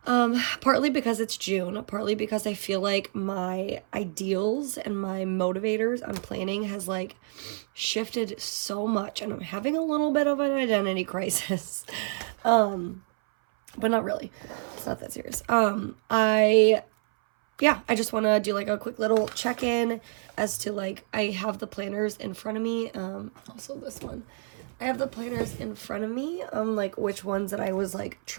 Partly because it's June, partly because I feel like my ideals and my motivators on planning has like shifted so much and I'm having a little bit of an identity crisis. But not really. It's not that serious. I just want to do like a quick little check-in as to like, I have the planners in front of me. Also this one, I have the planners in front of me, like which ones that I was like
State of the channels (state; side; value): silent; left; 59 dB below the other